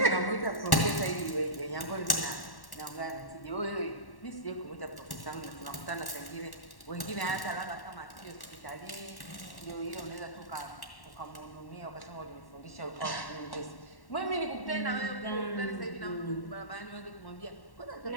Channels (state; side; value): late; right; 1.1 ms